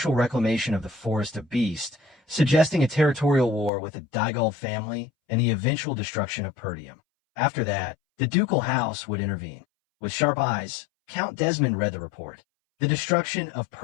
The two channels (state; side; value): drops out; right; at 3.7 s